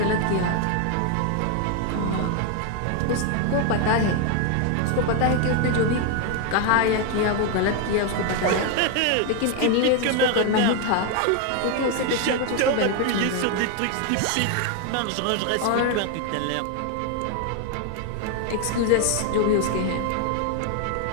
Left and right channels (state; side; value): different; both; correlation 0.01